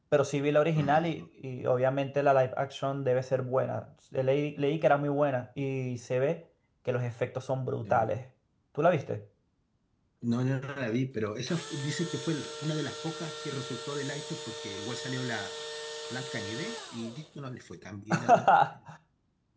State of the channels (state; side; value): identical; both; correlation 1.00